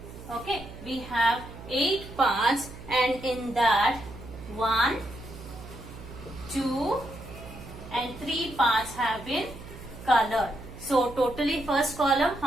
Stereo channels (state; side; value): noise; right; hum, 15 dB below the sound